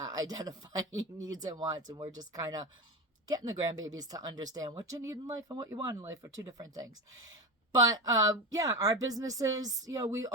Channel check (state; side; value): normal; both; correlation 0.20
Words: identifying needs and wants. And we're just kind of getting the grandbabies to understand what you need in life and what you want in life are 2 different things. But yeah, our businesses, we